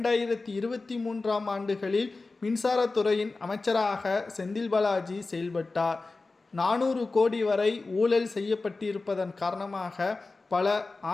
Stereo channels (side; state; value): right; quieter; 3.6 dB